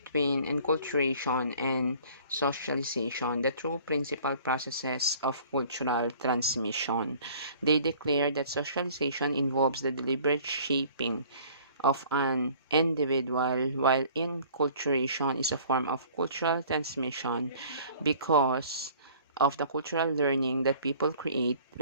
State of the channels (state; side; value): inverted; both; correlation -0.51